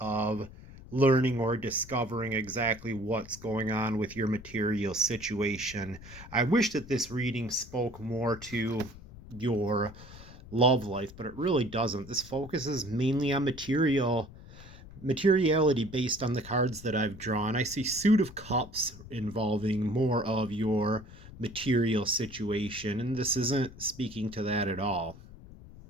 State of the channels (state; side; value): noise; left; rumble, 17 dB below the sound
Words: learning or discovering exactly what's going on with your material situation. I wish that this reading spoke more to your love life, but it really doesn't. This focuses mainly on materiality based on the cards that I've drawn. I see Suit of Cups involving more of your material situation, and this isn't speaking to that at all.